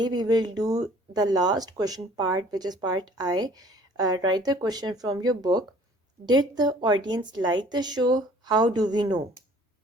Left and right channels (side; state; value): both; normal; correlation 0.54